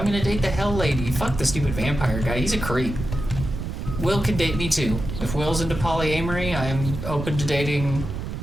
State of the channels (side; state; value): right; noise; rumble, 6 dB below the sound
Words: gonna date the Hell Lady. Fuck the stupid vampire guy. He's a creep. Will can date me, too. If Will's into polyamory, I'm open to dating